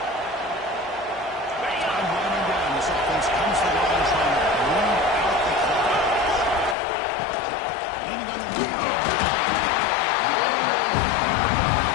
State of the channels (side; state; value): right; drops out; at 6.8 s